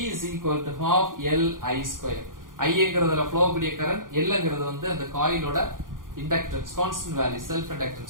is equal to half LI². ஐங்கிறதுல ஃப்ளோ கூடிய கரண்ட், Lங்கிறது வந்து அந்த காயிலோட inductance, constant value, self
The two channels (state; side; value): late; left; 0.90 ms